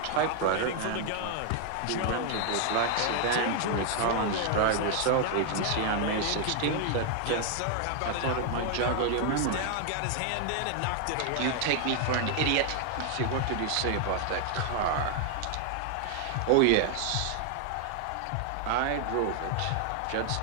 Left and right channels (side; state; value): both; different; correlation 0.00